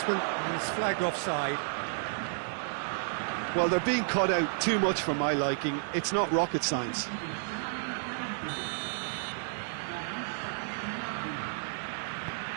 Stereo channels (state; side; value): silent; left; digital silence